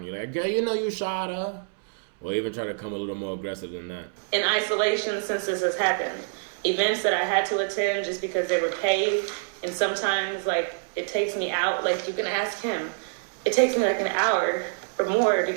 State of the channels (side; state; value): left; silent; 61 dB below the other